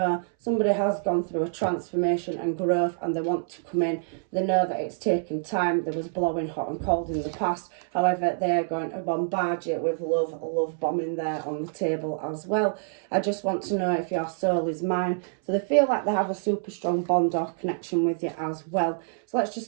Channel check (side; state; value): left; silent; 60 dB below the other